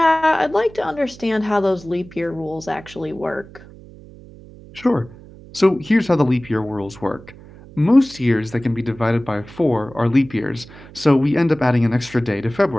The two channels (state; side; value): noise; right; hum, 20 dB below the sound